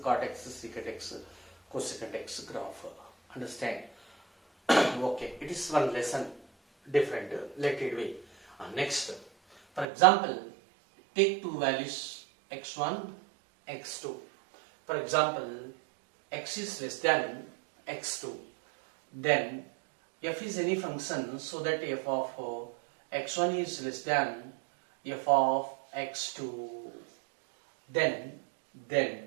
cot x, secant x, cosecant x graph. Understand? Okay, it is one lesson different, let it be. Next, for example, take two values x1, x2. For example, x is less than x2. Then f is any function so that f of x1 is less than f of x2. Then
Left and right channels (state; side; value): drops out; left; at 9.9 s